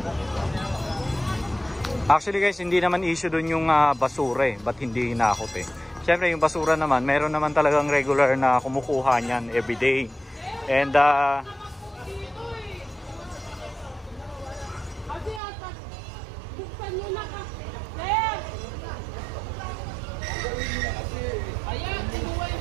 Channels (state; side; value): drops out; left; at 15.4 s